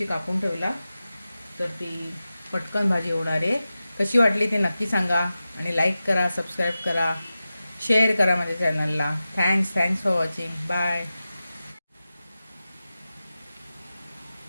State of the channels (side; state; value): both; inverted; correlation -0.94